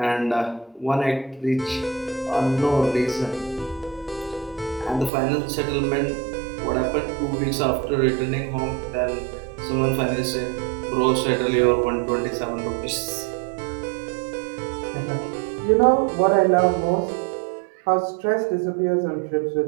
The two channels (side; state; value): left; drops out; at 5.1 s